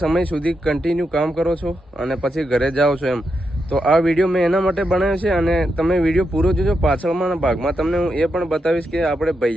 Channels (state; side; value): normal; both; correlation 0.85